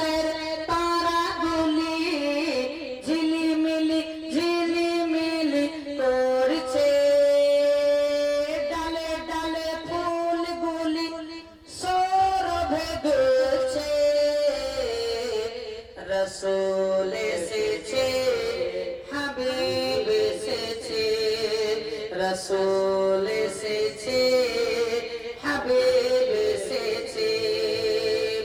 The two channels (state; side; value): identical; both; correlation 1.00